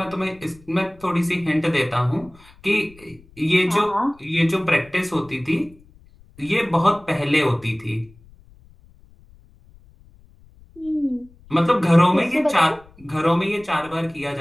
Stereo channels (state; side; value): noise; left; rumble, 26 dB below the sound